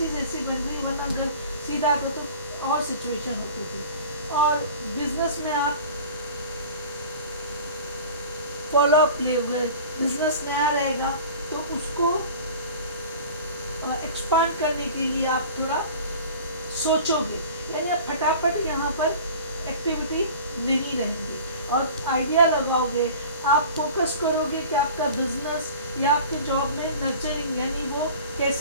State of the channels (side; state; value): both; inverted; correlation -0.41